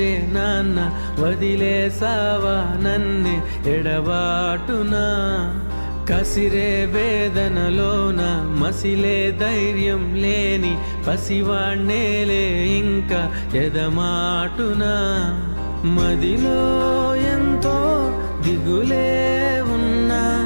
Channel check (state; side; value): inverted; both; correlation -1.00